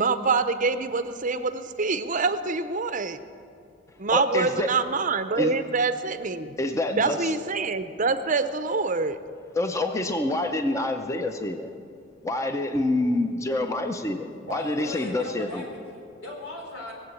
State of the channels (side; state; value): both; normal; correlation 0.15